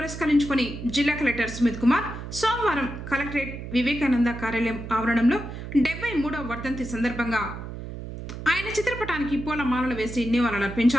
జిల్లా కలెక్టర్ సుమిత్ కుమార్ సోమవారం కలెక్టరేట్ వివేకానంద కార్యాలయం ఆవరణంలో 73వ వర్ధంతి సందర్భంగా ఆయన చిత్రపటానికి పూలమాలలు వేసి నివాళులు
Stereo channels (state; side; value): noise; right; hum, 9 dB below the sound